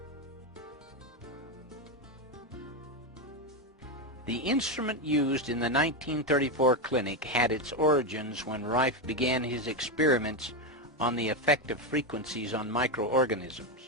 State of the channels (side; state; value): both; normal; correlation 0.10